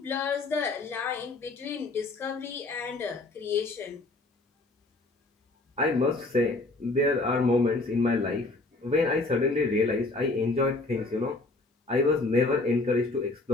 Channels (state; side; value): quieter; right; 3.2 dB